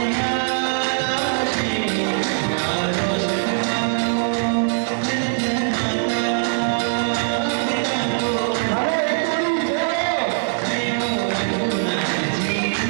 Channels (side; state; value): left; silent; digital silence